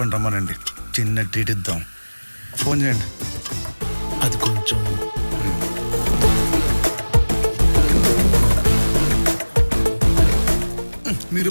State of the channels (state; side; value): inverted; both; correlation -1.00